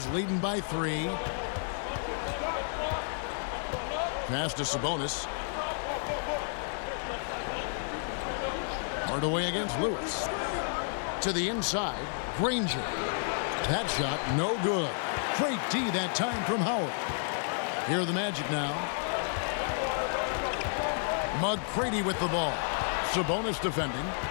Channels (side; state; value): right; silent; digital silence